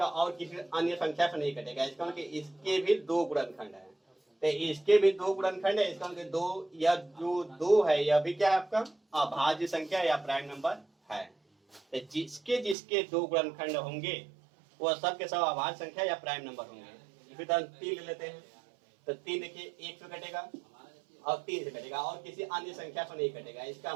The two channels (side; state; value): left; drops out; at 12.8 s